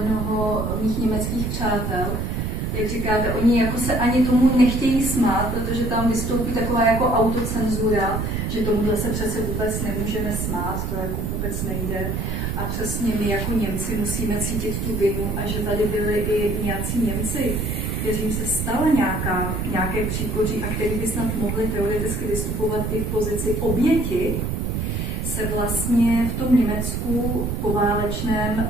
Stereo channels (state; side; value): noise; right; rumble, 1 dB below the sound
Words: mých německých přátel, jak říkáte, oni jako se ani tomu nechtějí smát, protože tam vystoupí taková jako autocenzura, že tomuhle se přece vůbec nemůžeme smát, to jako vůbec nejde. A přesně my jako Němci musíme cítit tu vinu a že tady byli i nějací Němci, kterým se stala nějaké příkoří a který by snad mohli teoreticky vystupovat i v pozici oběti, se vlastně v tom Německu